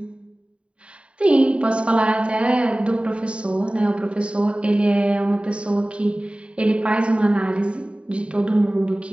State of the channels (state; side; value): late; left; 0.059 ms